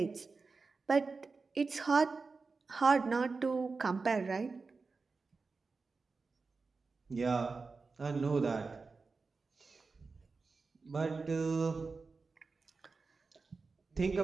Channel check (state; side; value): quieter; left; 4.3 dB